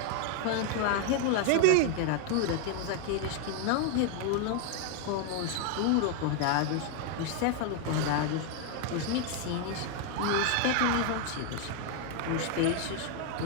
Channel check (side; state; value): both; different; correlation 0.00